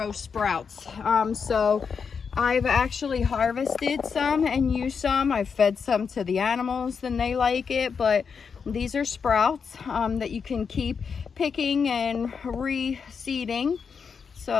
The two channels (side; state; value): right; quieter; 6.0 dB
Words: sprouts. So I've actually harvested some and used some. I've fed some to the animals and they like it, but these are sprouts that you can keep picking and reseeding.